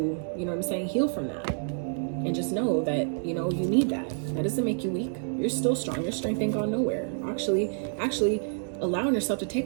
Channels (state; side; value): silent; left; digital silence